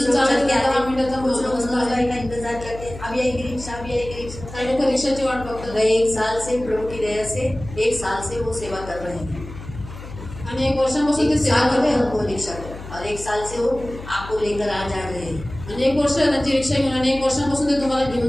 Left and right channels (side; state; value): left; noise; hum, 13 dB below the sound